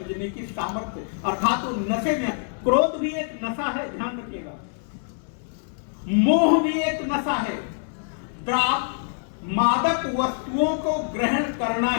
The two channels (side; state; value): right; silent; digital silence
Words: की सामर्थ्य, अर्थात तो नशे में, क्रोध भी एक नशा है, ध्यान रखिएगा, मोह भी एक नशा है। मादक वस्तुओं को ग्रहण करना